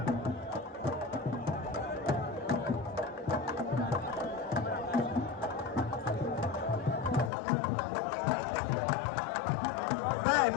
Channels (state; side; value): drops out; right; at 7.3 s